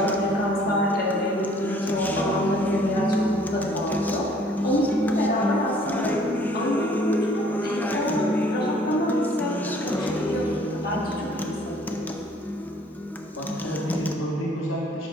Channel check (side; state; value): both; normal; correlation 0.57